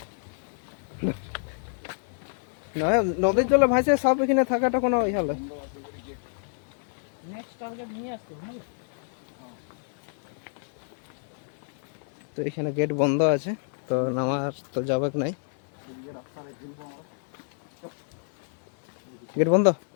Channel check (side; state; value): right; silent; 59 dB below the other